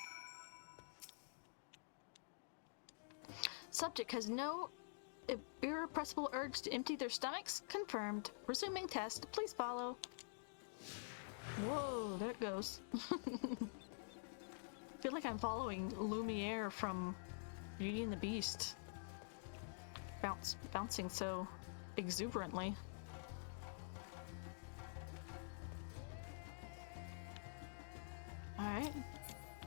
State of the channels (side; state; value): right; silent; digital silence